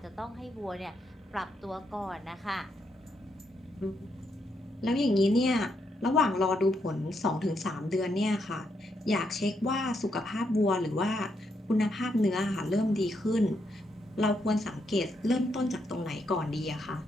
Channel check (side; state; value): both; normal; correlation 0.78